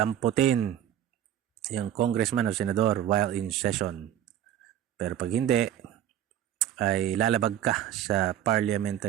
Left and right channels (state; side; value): quieter; left; 11.0 dB